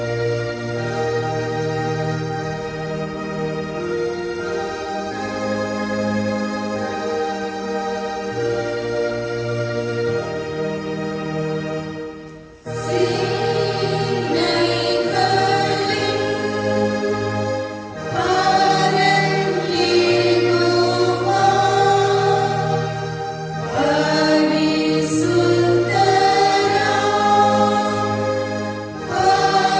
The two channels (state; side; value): identical; both; correlation 1.00